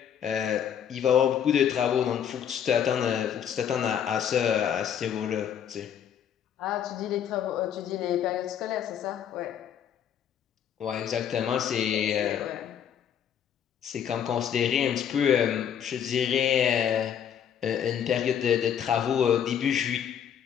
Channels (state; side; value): quieter; right; 8.9 dB